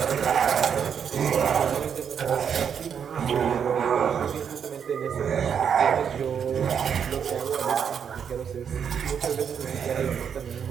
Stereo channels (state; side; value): quieter; left; 7.6 dB